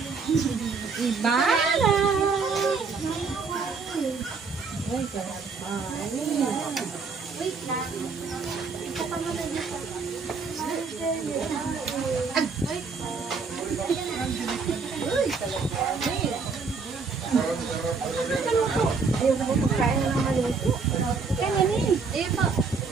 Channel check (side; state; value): left; quieter; 4.8 dB